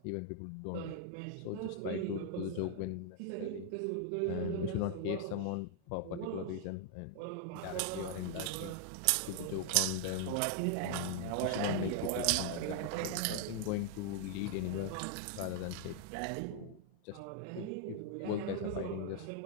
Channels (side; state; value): both; different; correlation 0.00